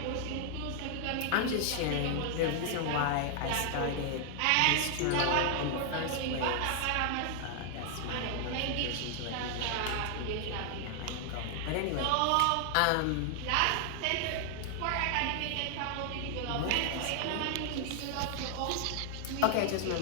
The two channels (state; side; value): different; both; correlation 0.00